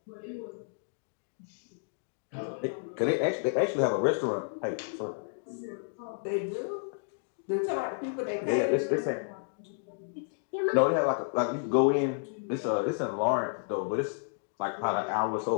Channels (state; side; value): silent; right; digital silence